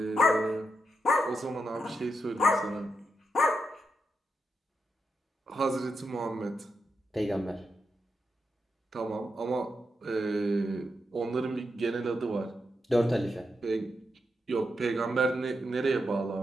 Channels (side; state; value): both; normal; correlation 0.85